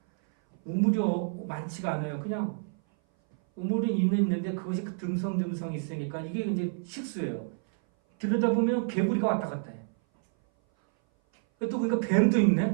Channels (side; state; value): left; silent; 57 dB below the other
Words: 우물이 많지가 않아요. 그냥 우물이 있는데 그것이 듬성듬성 있으니까 이게 이제 식수예요. 들여다보면 개구리가 왔다 갔다 해. 또 그러니까 뱀도